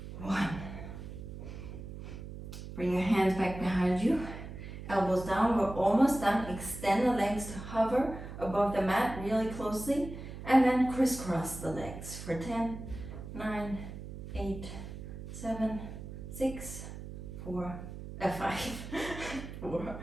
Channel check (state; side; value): noise; right; hum, 10 dB below the sound